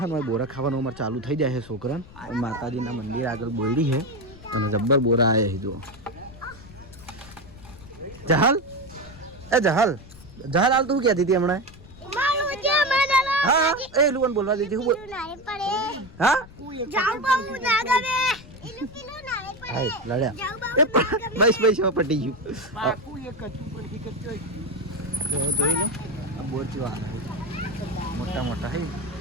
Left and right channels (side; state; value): left; noise; rumble, 19 dB below the sound